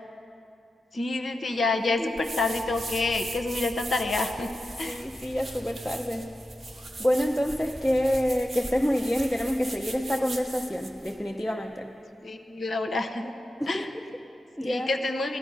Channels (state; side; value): normal; both; correlation 0.91